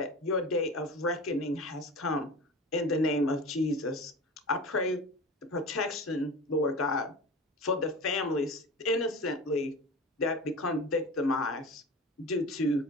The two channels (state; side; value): normal; both; correlation 0.33